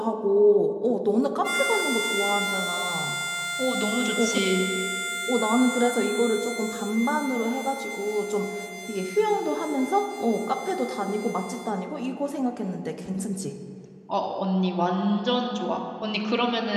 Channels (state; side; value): identical; both; correlation 1.00